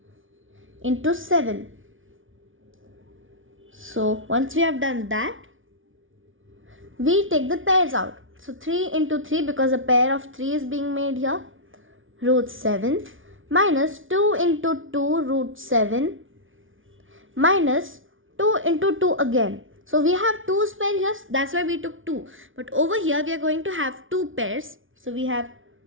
into 7. So once we have done that, we take the pairs out. So 3 into 3, because a pair of 3 is being made here, root 7 minus 2 into 2 root 7 minus 2 into 2 again. So we have 2's pair here, that's why we took 2. But over here we are going to have 2 pairs. So we have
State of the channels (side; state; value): left; late; 0.57 ms